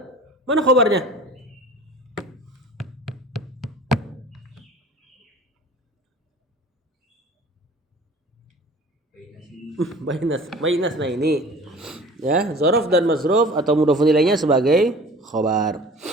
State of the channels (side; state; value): both; normal; correlation 0.44